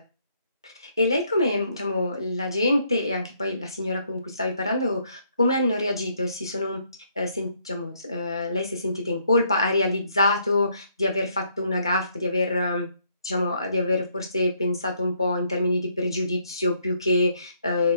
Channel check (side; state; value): both; inverted; correlation -0.70